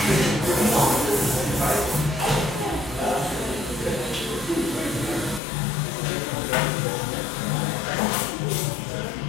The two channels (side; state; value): right; drops out; at 5.4 s